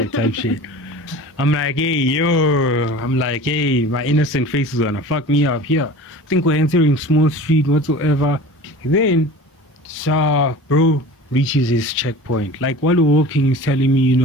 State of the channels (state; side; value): normal; both; correlation 0.38